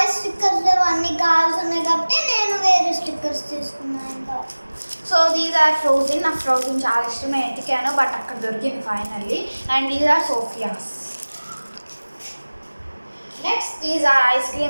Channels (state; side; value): inverted; both; correlation -1.00